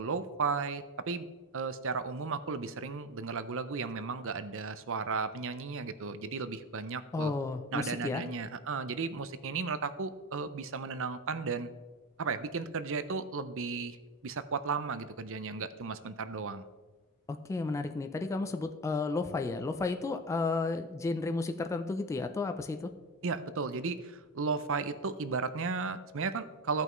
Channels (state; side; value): normal; both; correlation 0.23